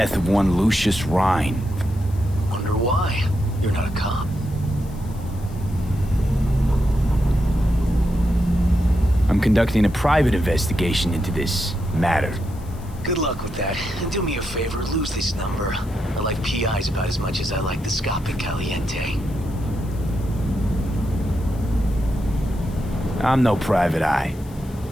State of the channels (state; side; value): noise; left; hiss, 24 dB below the sound